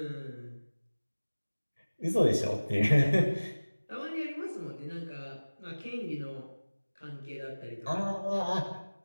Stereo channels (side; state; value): both; inverted; correlation -1.00